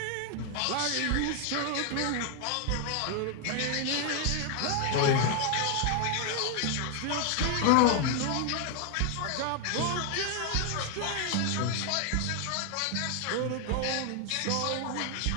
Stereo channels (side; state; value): both; different; correlation 0.01